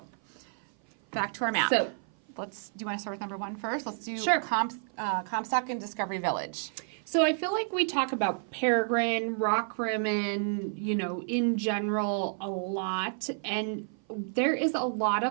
back to our map. So do you want to start with number 1 first? Let's do Comstock and Discovery Village. So I feel like we talk about Peregrine, Rockrimmon, in general a lot. And there is a lot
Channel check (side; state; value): left; silent; 55 dB below the other